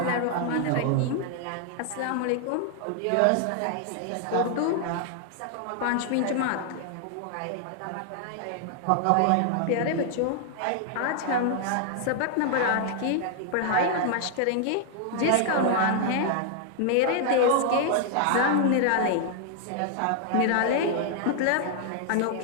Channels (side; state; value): both; different; correlation 0.00